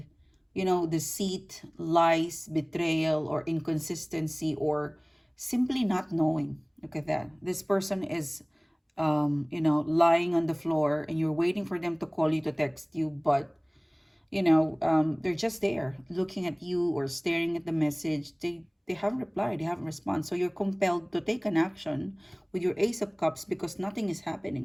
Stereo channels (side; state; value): both; identical; correlation 1.00